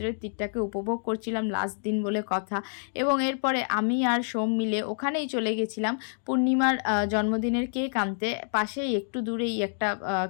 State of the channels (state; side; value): silent; right; digital silence